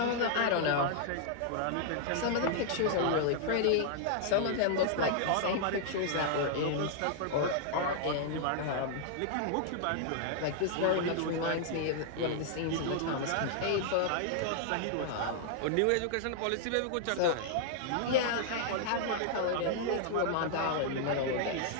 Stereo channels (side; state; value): both; different; correlation -0.01